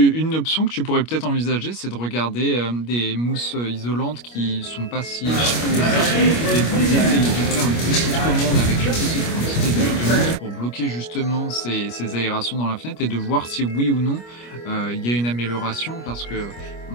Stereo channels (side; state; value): right; late; 25 ms